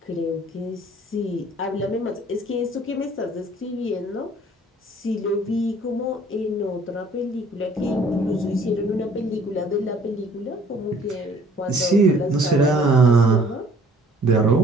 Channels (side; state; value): both; normal; correlation 0.56